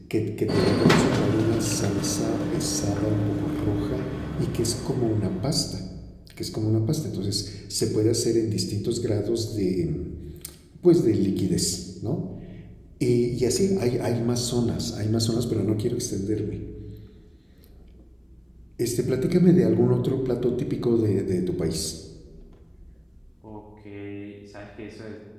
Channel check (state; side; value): identical; both; correlation 1.00